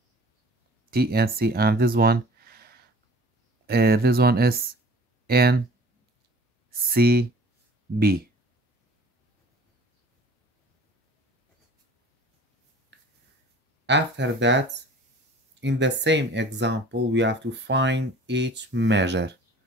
TNC and this one is NCB. After that, in the same example, we have to find each measure.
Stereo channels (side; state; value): both; normal; correlation 0.48